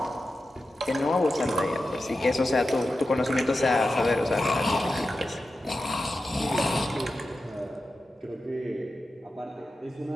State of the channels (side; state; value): both; normal; correlation 0.91